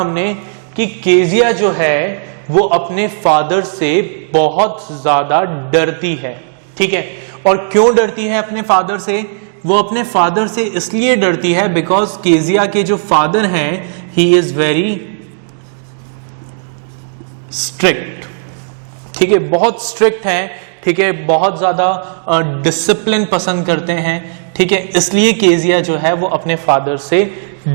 कि केजिया जो है वो अपने फादर से बहुत ज्यादा डरती है, ठीक है। और क्यों डरती है अपने फादर से? वो अपने फादर से इसलिए डरती है बिकॉज केजिया के जो फादर हैं ही इज वेरी स्ट्रिक्ट, ठीक है, बहुत स्ट्रिक्ट हैं, ठीक है, बहुत ज्यादा डिसिप्लिन पसंद करते हैं, ठीक है, इसलिए केजिया जो है वो अपने फादर से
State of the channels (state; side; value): silent; left; digital silence